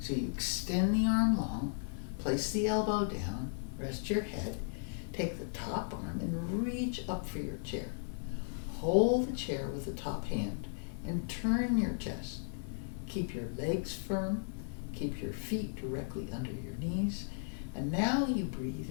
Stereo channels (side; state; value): right; silent; digital silence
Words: you extend the arm long, place the elbow down, rest your head, take the top arm and reach up for your chair. Hold the chair with the top hand and turn your chest. Keep your legs firm, keep your feet directly under your knees, And now you breathe